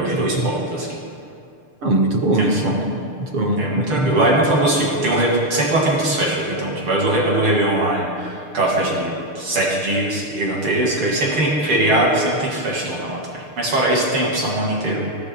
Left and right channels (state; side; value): late; left; 6.7 ms